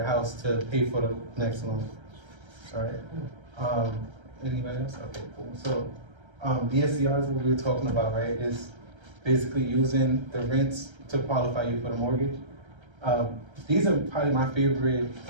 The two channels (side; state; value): left; late; 1.3 ms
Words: house to pay for the next loan. All right. Anybody else? Okay, cool. So DSCR is what we were talking about, right? Is basically using the rents to qualify you for the mortgage. These are probably my favorite